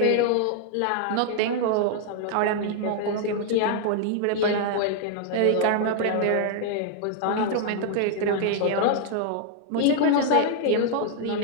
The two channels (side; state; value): both; different; correlation 0.00